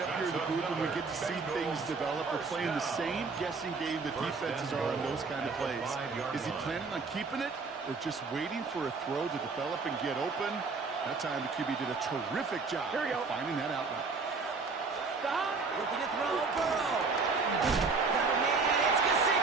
up here in the booth when we get to see things develop? We're playing the same guessing game the defenses are on those kind of plays. Is he planning on keeping it or just waiting for a throw to develop and get open? That time the QB did a terrific job of finding that outlet. Stop. Looking to throw, Burrow. Got a man, it's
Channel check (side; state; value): left; quieter; 4.4 dB